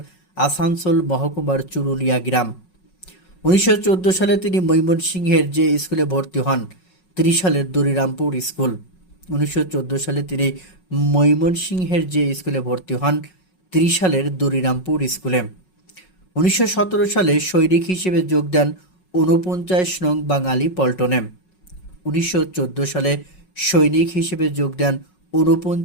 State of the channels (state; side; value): late; right; 5.4 ms